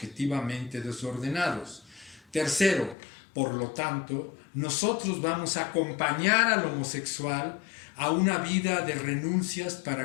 desordenados. Tercero, por lo tanto, nosotros vamos a acompañar al homosexual a una vida de renuncias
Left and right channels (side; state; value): right; drops out; at 3.0 s